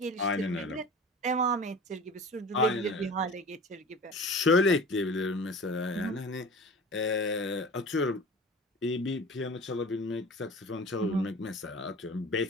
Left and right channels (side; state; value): both; normal; correlation 0.38